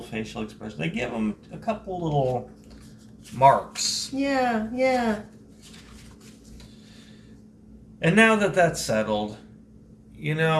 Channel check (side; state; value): both; identical; correlation 1.00